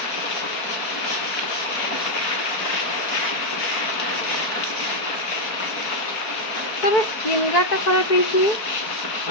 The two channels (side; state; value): right; late; 4.6 ms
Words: तेरे स्किन का खराब है